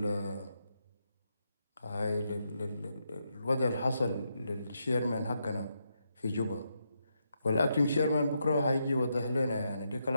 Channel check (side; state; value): both; inverted; correlation -0.82